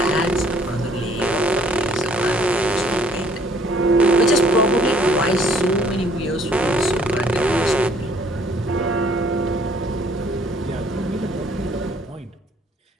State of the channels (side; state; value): both; normal; correlation 0.61